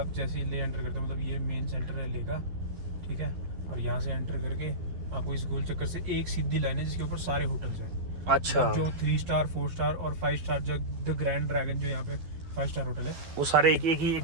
जैसे ही ले एंटर करते हो, मतलब ये मेन सेंटर है ले का, ठीक है, और यहाँ से एंटर करके आपको इस गोल चक्कर से एक सीधी लाइन है जिसके ऊपर सारे होटल्स हैं। अच्छा, जो 3 स्टार 4 स्टार और 5 स्टार, जो द ग्रैंड ड्रैगन जो यहाँ पे 5 स्टार होटल है, वो सारे एक ही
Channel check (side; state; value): left; late; 12 ms